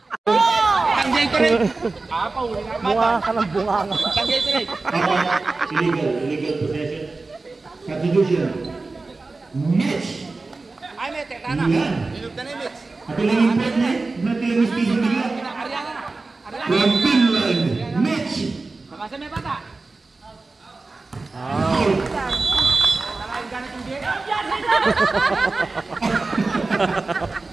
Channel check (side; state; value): left; quieter; 3.6 dB